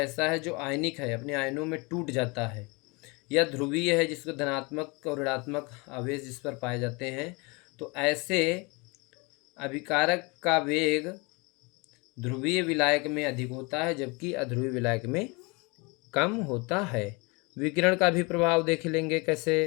है जो आयनिक है, अपने आयनों में टूट जाता है, या ध्रुवीय है जिसको धनात्मक और ऋणात्मक आवेश जिस पर पाए जाते हैं, तो ऐसे अभिकारक का वेग ध्रुवीय विलायक में अधिक होता है जबकि अध्रुवीय विलायक में कम होता है। विकिरण का भी प्रभाव देख लेंगे कैसे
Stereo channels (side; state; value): right; quieter; 28.2 dB